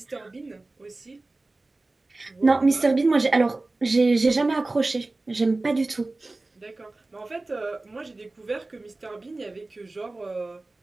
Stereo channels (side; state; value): left; quieter; 3.1 dB